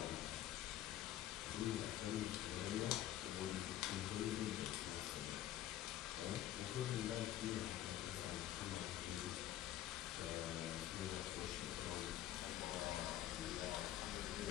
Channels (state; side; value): quieter; right; 13.0 dB